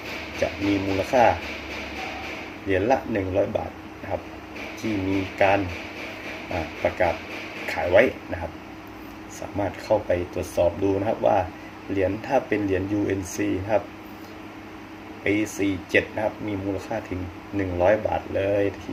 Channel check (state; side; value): identical; both; correlation 1.00